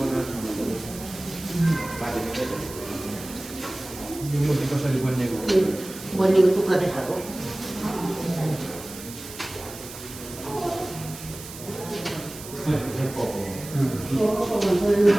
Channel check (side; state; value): right; noise; hiss, 14 dB below the sound